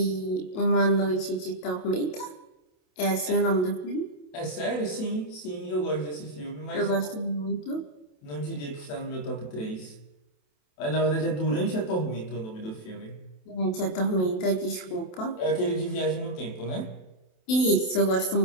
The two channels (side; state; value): right; late; 27 ms